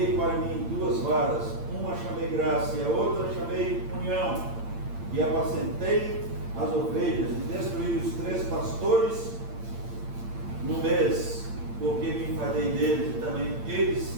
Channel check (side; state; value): left; late; 8.8 ms